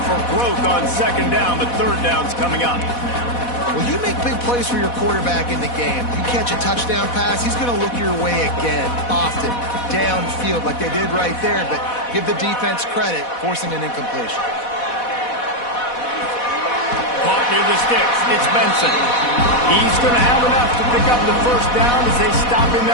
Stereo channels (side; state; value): right; late; 4.1 ms